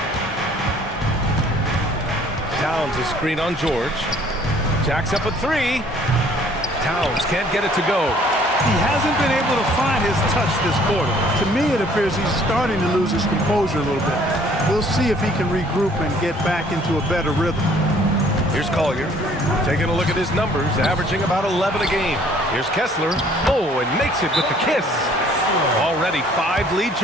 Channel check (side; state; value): both; normal; correlation 0.58